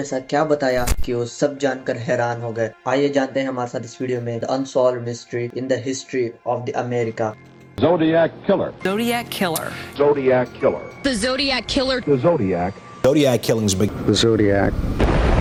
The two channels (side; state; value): both; identical; correlation 1.00